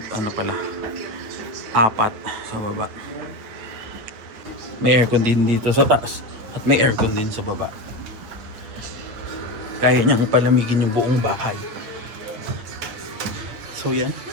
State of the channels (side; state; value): left; late; 9.0 ms